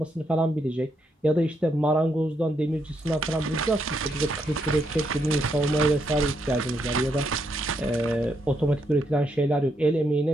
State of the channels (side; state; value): both; normal; correlation 0.78